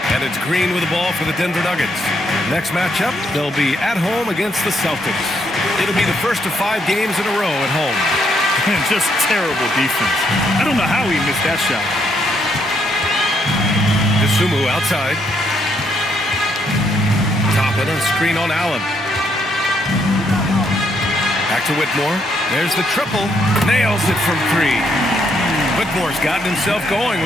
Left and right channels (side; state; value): both; normal; correlation 0.74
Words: And it's Green with the ball for the Denver Nuggets. Next matchup, they'll be at home against the Celtics. It'll be the first of 5 games in a row at home. Just terrible defense. I don't know how he missed that shot. Dosunmu outside. Toppin on screen on Allen. Back to Whitmore. There's the triple. Nails it from 3. Whitmore's gotten himself going